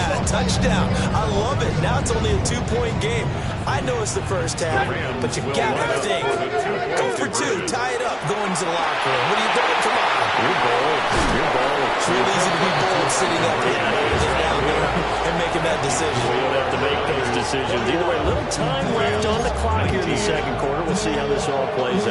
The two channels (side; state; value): both; identical; correlation 1.00